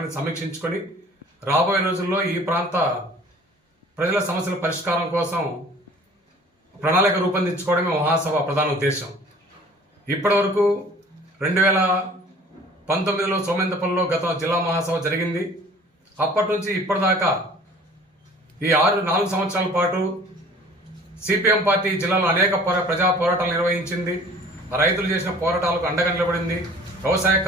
సమీక్షించుకొని రాబోయే రోజుల్లో ఈ ప్రాంత ప్రజల సమస్యల పరిష్కారం కోసం ప్రణాళిక రూపొందించుకోవడమే మహాసభ ప్రధాన ఉద్దేశం. ఇప్పటి వరకు 2019లో సోమేంద్రపల్లిలో గత జిల్లా మహాసభ జరిగింది. అప్పటి నుంచి ఇప్పటిదాకా ఈ 4 సంవత్సరాల పాటు సిపిఎం పార్టీ జిల్లాలో అనేక ప్రజా పోరాటాలు నిర్వహించింది. రైతులు చేసిన పోరాటాలకు అండగా నిలబడింది. వ్యవసాయ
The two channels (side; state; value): both; normal; correlation 0.49